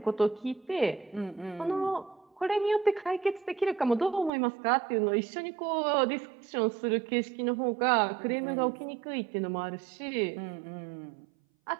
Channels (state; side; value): drops out; left; at 4.3 s